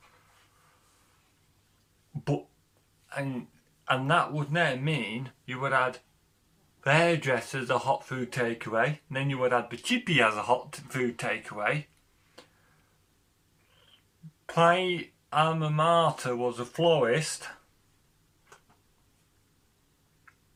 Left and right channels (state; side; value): identical; both; correlation 1.00